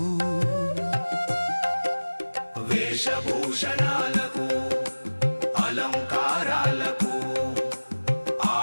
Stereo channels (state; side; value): inverted; both; correlation -1.00